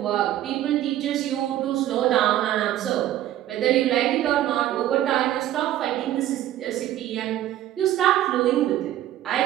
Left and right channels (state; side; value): quieter; left; 13.1 dB